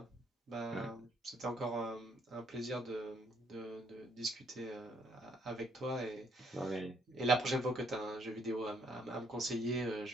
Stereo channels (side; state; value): both; normal; correlation 0.68